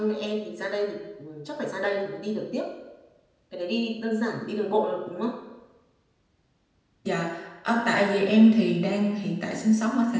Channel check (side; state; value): both; identical; correlation 1.00